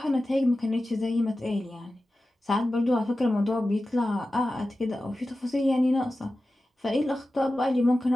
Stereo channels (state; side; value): normal; both; correlation 0.94